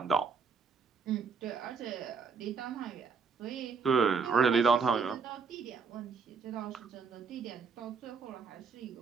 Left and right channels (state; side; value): quieter; left; 5.3 dB